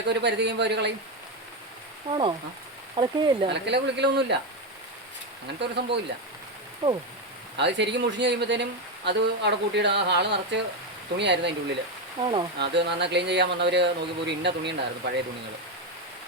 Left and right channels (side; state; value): both; normal; correlation 0.10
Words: ഒരു പരിധി കഴിയുമ്പോൾ അവർ കളയും. ആണോ? അലക്കുകയില്ല? അലക്കല കുളിക്കലൊന്നുമില്ല, അങ്ങനത്തെ ഒരു സംഭവം ഇല്ല. ഓ, അത് ശരിക്കും മുഷിഞ്ഞ് കഴിയുമ്പോഴത്തേനും അത് അവിടെ കൂട്ടിയിടും. ആ ഹാള് നിറച്ച് തുണിയായിരുന്നു അതിൻ്റെ ഉള്ളിൽ. ആണോ? അത് നന്നായി ക്ലീൻ ചെയ്യാൻ വന്നവർ നോക്കിയപ്പോൾ ഒരു ഇന്ന തുണി ഉണ്ടായിരുന്നു, പഴയ തുണികൾ.